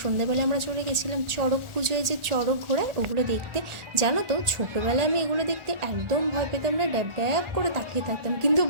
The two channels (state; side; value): late; left; 1.4 ms